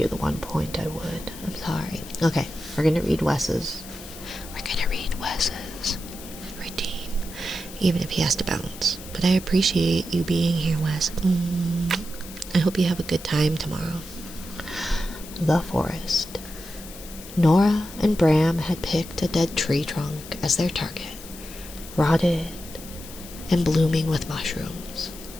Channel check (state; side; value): noise; left; hiss, 15 dB below the sound